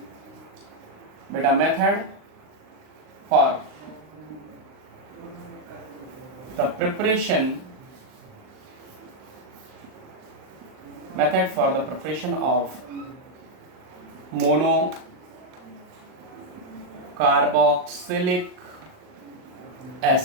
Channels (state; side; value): late; left; 39 ms